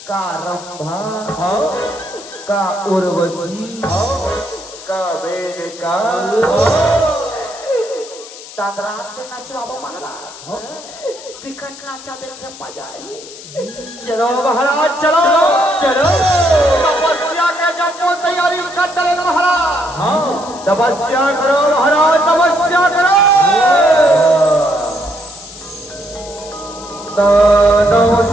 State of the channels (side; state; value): left; noise; hiss, 16 dB below the sound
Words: का रंभा का उर्वशी का वेदिका तादरात के नचवाबो महाराज विकट नाचा देखे मजा आई चलो महाराज चलो चलो तपस्या के जब तैयारी कर डरे महाराज हाँ तपस्या करो महाराज तपस्या करो दानो